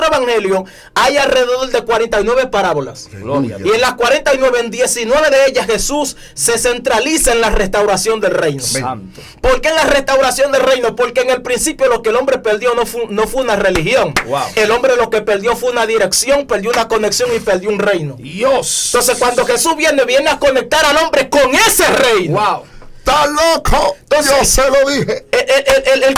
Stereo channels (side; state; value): both; identical; correlation 1.00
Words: evangelios hay alrededor de 49 parábolas. Y en las 49, en 19 de ellas Jesús se centraliza en la restauración del reino. Santo. ¿Por qué en la restauración del reino? Porque en el principio lo que el hombre perdió no fue una religión. Wow. El hombre lo que perdió fue una dirección, perdió una conexión y perdió un reino. Dios. Entonces cuando Jesús viene a conectar al hombre con ese reino. Wow. ¡Está loco! Entonces, yo se lo dije. El